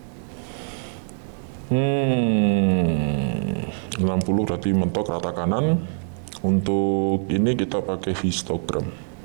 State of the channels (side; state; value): left; silent; 63 dB below the other